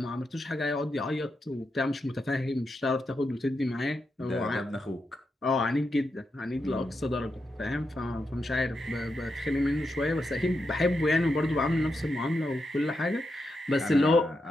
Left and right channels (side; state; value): both; normal; correlation 0.85